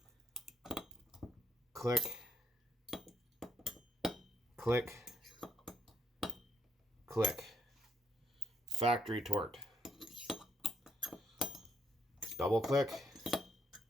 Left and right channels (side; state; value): both; normal; correlation 0.72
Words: click, click, click. Factory torque. Double click,